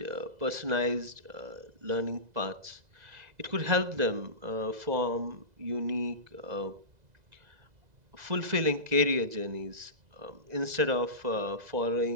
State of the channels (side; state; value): left; late; 2.0 ms